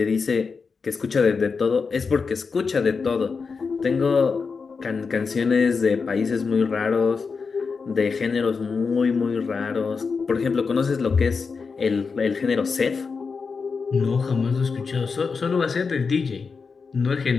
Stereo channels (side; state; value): right; quieter; 5.1 dB